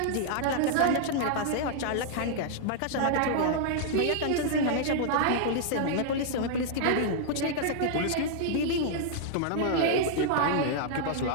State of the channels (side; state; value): both; different; correlation -0.01